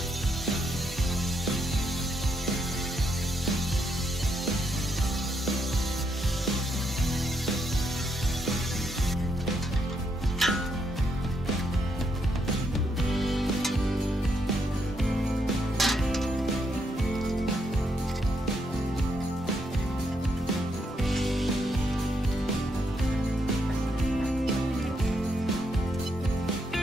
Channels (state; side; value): normal; both; correlation 0.77